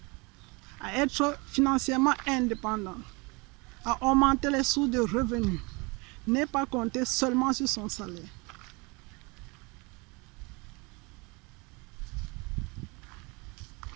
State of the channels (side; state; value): left; quieter; 28.1 dB